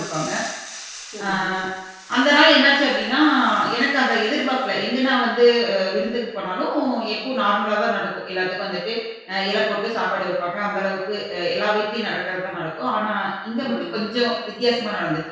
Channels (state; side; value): identical; both; correlation 1.00